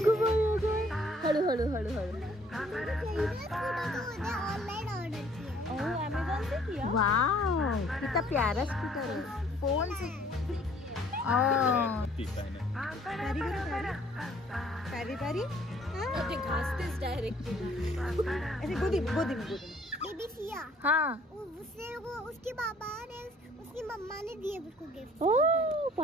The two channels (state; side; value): normal; both; correlation 0.59